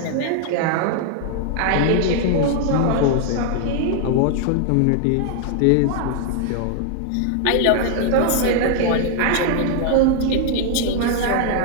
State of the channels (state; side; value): different; both; correlation 0.00